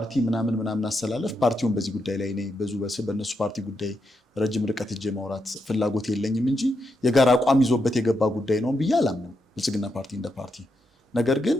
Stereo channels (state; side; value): normal; both; correlation 0.83